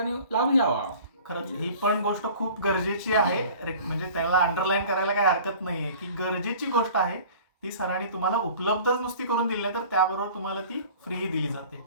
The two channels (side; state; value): both; inverted; correlation -0.45